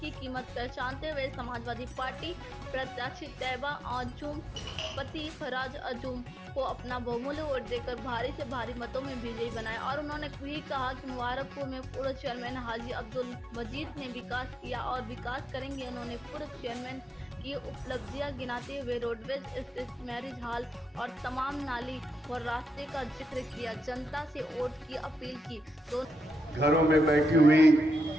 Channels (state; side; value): normal; both; correlation 0.86